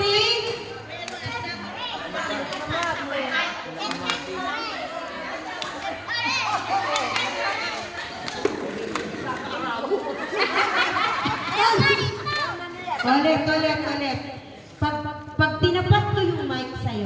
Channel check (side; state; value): both; identical; correlation 1.00